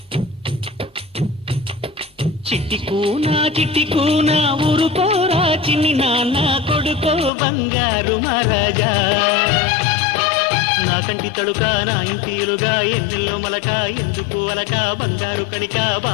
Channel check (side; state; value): right; drops out; at 7.3 s